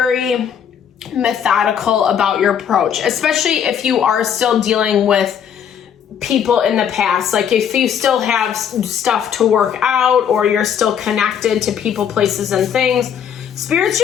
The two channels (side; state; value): right; quieter; 8.4 dB